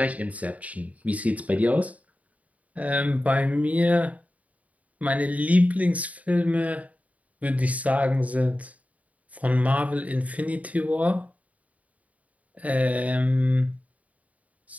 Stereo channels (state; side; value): late; left; 0.070 ms